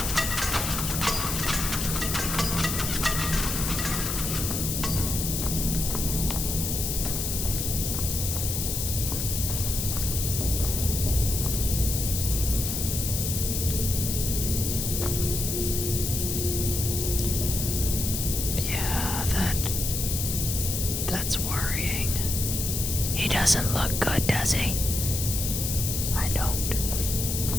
That's worrying. He doesn't look good, does he? I don't.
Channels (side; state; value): left; noise; hiss, 2 dB below the sound